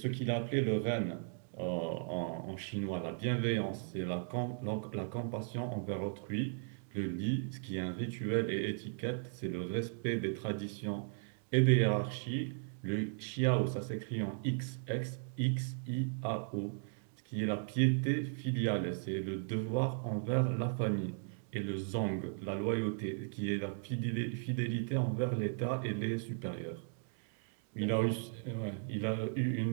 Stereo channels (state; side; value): silent; left; digital silence